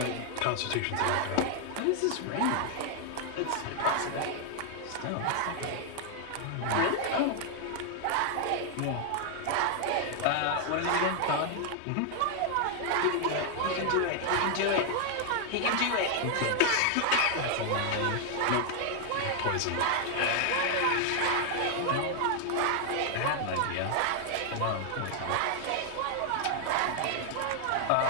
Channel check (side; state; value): both; different; correlation 0.00